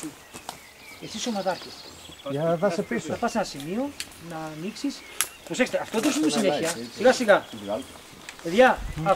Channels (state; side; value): identical; both; correlation 1.00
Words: μου. Εσύ είσαι ομαδάρχης. Για να δάσει πίσω. Θα πας σε ένα σημείο να ανοίξεις. Προσέξτε, αυτό δεν σου πει συνέχεια. Σιγά σιγά. Παιδιά,